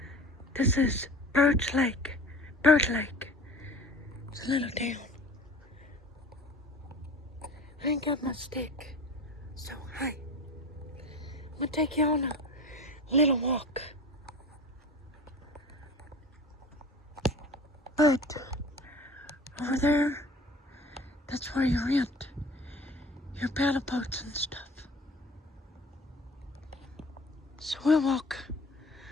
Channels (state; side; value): normal; both; correlation 0.41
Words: This is Bird Lake. It's a little town. I ain't got my stick, so hi. I'm gonna take you on a little walk. But over there, that's where you rent your paddle boats and stuff. So we'll walk